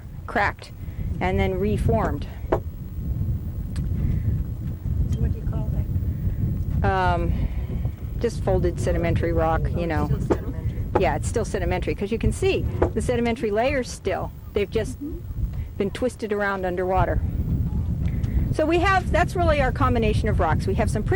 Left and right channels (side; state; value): both; identical; correlation 1.00